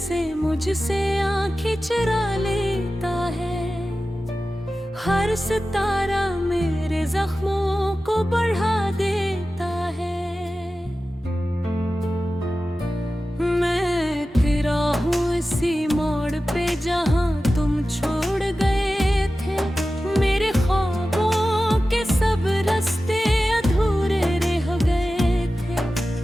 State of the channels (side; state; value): both; normal; correlation 0.94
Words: मुझसे आंखें चुरा लेता है, हर सितारा मेरे जख्मों को बढ़ा देता है। मैं तेरा हूँ इसी मोड़ पे जहाँ तुम छोड़ गए थे। मेरे ख्वाबों के सब रास्ते अधूरे रह गए